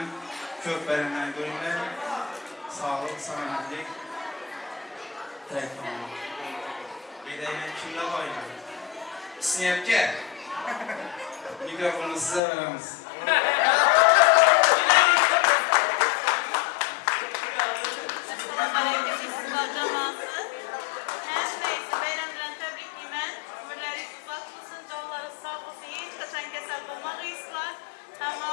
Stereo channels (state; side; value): drops out; right; at 12.4 s